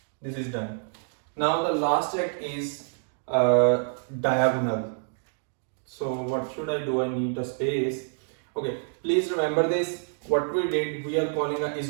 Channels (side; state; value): left; silent; digital silence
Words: This is done. Now the last check is diagonal. So what should I do? I need a space. Okay, please remember this. What we did, we are calling a is